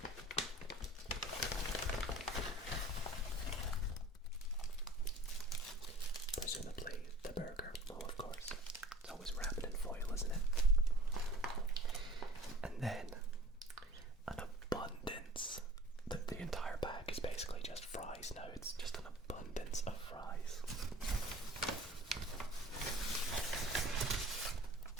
presumably the burger. Oh, of course. It's always wrapped in foil, isn't it? And then an abundance. The entire bag is basically just fries now. It's just an abundance of fries.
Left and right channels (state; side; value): normal; both; correlation 0.45